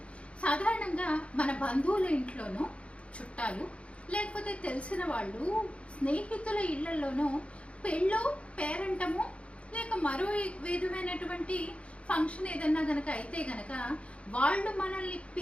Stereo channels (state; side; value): late; right; 0.061 ms